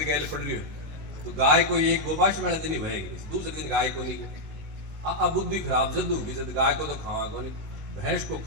गैल पड़ रही हो, तो गाय को एक गोपाष्टमी वाले दिन ही बहेगी, दूसरे दिन गाय को नहीं। अब बुद्धि खराब जद होगी, जद गाय को तो खावा को नहीं, भैंस को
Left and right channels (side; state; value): left; late; 19 ms